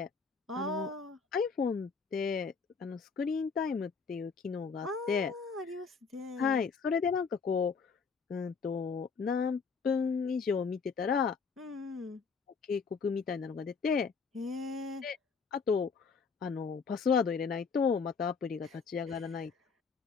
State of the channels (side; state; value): right; quieter; 5.3 dB